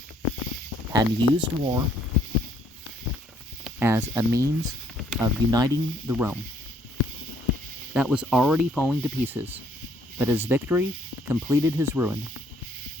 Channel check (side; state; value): both; normal; correlation 0.66